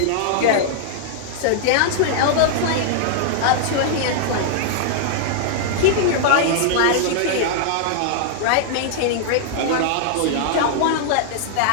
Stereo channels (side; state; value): both; different; correlation -0.01